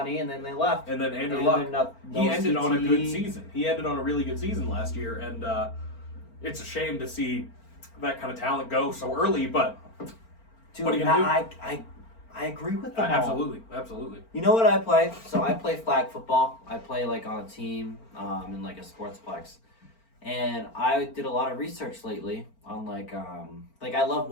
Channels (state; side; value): late; right; 4.4 ms